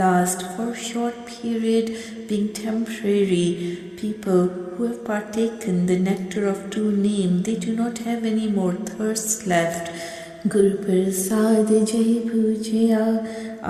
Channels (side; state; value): both; identical; correlation 1.00